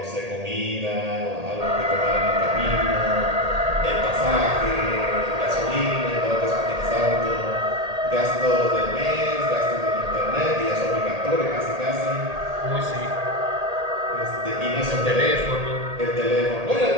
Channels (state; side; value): late; left; 1.8 ms